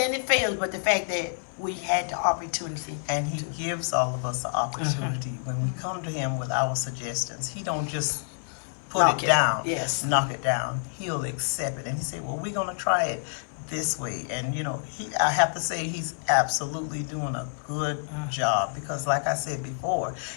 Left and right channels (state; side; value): silent; right; 60 dB below the other